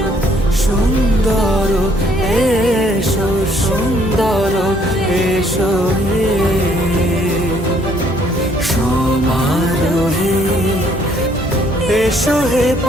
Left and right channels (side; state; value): both; normal; correlation 0.65